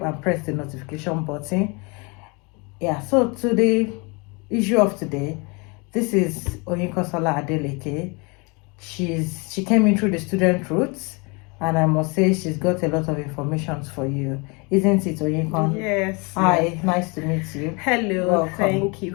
and press the notification button. Yeah, so to the issue of today, this is Oyinkansola Adeleke. She came in through the student routes, and I must say she's got a lot of information for you, isn't it, Oyinkan? Yes. Hi, nice to meet you. Hello. Welcome. Thank you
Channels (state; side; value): quieter; right; 30.1 dB